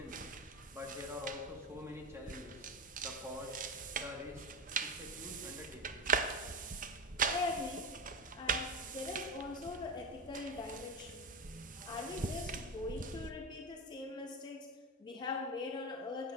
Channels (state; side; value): normal; both; correlation 0.18